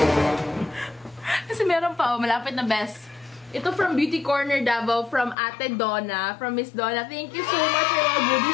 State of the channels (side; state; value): right; drops out; at 5.4 s